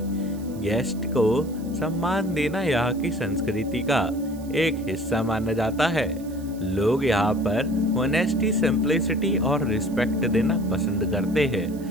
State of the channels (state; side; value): noise; right; hiss, 23 dB below the sound